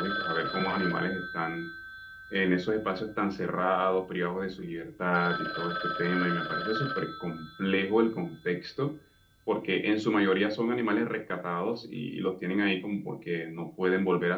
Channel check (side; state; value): both; identical; correlation 1.00